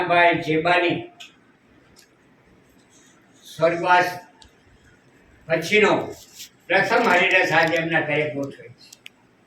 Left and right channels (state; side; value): identical; both; correlation 1.00